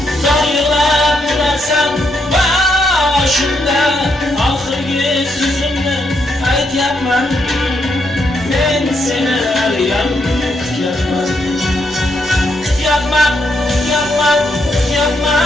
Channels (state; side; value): normal; both; correlation 0.78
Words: Zor yig'lab turarsan boshimda, oxirgi so'zimni aytyapman, men seni haliyam kutyapman. Kutyapman, kutyapman,